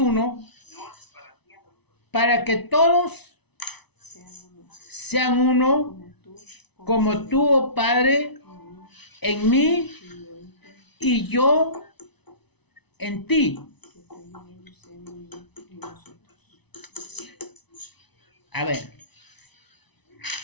para que todos sean uno, como tú, oh Padre, en mí y yo en ti. A ver.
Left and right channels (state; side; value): late; right; 0.99 ms